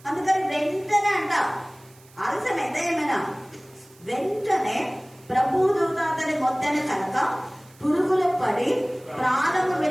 అందుకని వెంటనే అంట ఆలస్యమైతే ఏమైనా వెంటనే ప్రభుదూత అతని మొత్తని కనుక పురుగులు పడి ప్రాణము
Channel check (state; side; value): noise; right; hiss, 27 dB below the sound